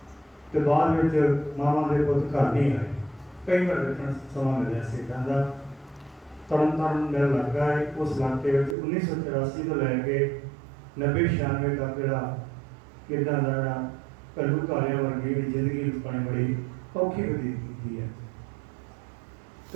ਤੇ ਬਾਅਦ ਵਿੱਚ ਮਾਵਾਂ ਦੇ ਪੁੱਤ ਘਰ ਨਹੀਂ ਆਏ। ਕਈ ਵਾਰ ਦੇਖਣ ਸਮਾਂ ਮਿਲਿਆ ਸੀ ਇੱਦਾਂ ਦਾ। ਤਰਨ ਮੇਰਾ ਲੱਗਾ ਹੈ ਉਸ ਇਲਾਕੇ ਵਿੱਚ 1984 ਤੋਂ ਲੈ ਕੇ 90-96 ਤੱਕ ਜਿਹੜਾ ਇੱਦਾਂ ਦਾ ਜਿਹੜਾ ਘੱਲੂਘਾਰਿਆਂ ਵਰਗੀ ਜ਼ਿੰਦਗੀ ਲੋਕਾਂ ਨੇ ਬੜੀ ਔਖੀ ਬਤੀਤ ਕੀਤੀ ਹੈ।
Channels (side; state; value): left; drops out; at 8.8 s